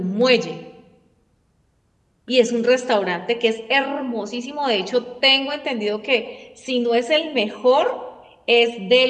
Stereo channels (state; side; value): identical; both; correlation 1.00